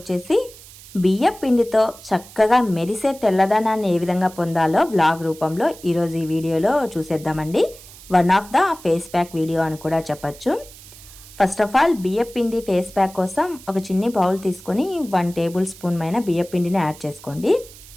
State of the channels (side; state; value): right; noise; hiss, 19 dB below the sound